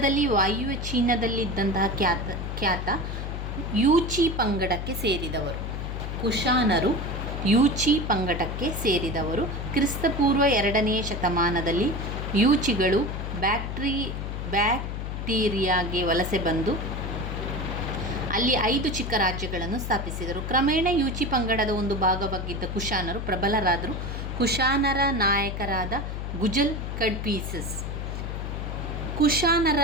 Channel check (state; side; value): noise; left; hum, 5 dB below the sound